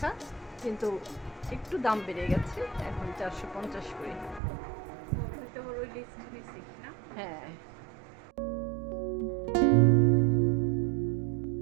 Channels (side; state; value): left; drops out; at 4.4 s